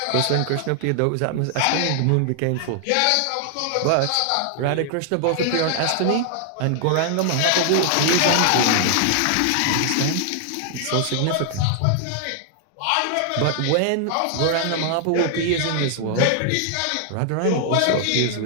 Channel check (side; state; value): both; different; correlation 0.00